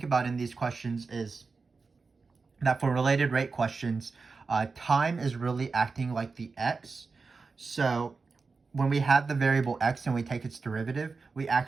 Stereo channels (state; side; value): quieter; left; 4.4 dB